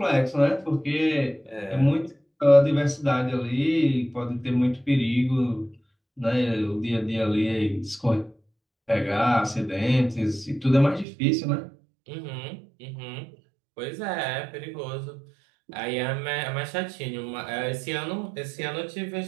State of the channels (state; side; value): drops out; left; at 11.1 s